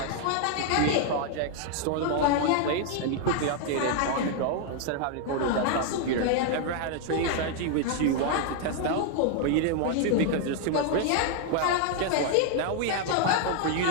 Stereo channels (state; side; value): different; both; correlation 0.00